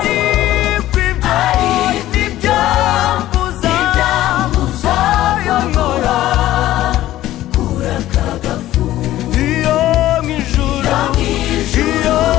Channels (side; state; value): right; quieter; 14.5 dB